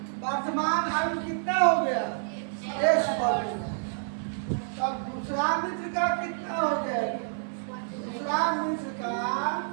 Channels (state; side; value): silent; left; 59 dB below the other